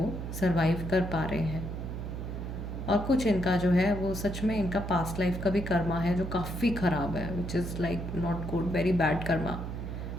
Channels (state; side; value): noise; right; hum, 6 dB below the sound